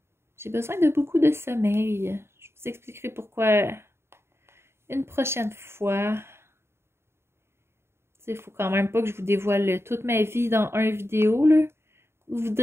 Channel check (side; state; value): left; late; 0.12 ms